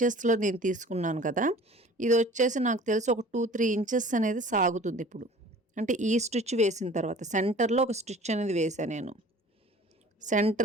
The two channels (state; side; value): normal; both; correlation 0.46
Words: నేను తీసుకున్నాను కదా, ఇది వచ్చేసి నాకు తెలిసి ఒక 2-3 ఇంచెస్ అనేది సాగుతుంది ఇప్పుడు. అంటే ఈ స్టిచ్ వేసిన తర్వాత సెంటర్లో ఒక స్టిచ్ అనేది వేసాను నేను.